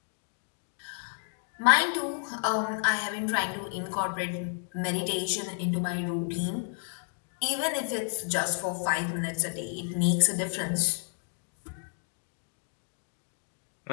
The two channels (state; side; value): silent; right; 57 dB below the other